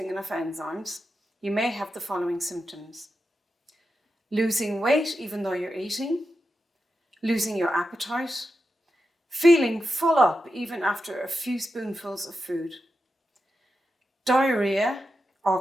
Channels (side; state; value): both; normal; correlation 0.89